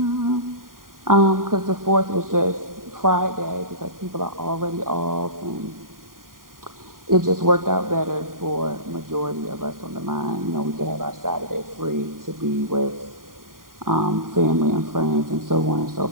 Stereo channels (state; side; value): late; left; 0.91 ms